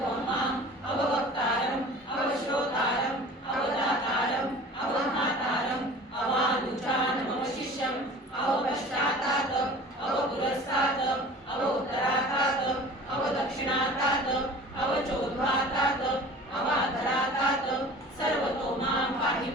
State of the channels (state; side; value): normal; both; correlation 0.42